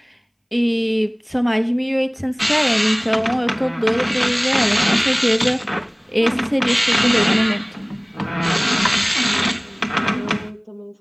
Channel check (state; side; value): identical; both; correlation 1.00